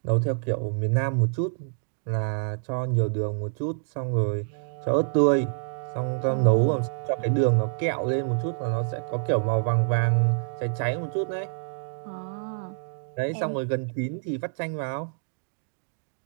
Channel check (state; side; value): silent; left; digital silence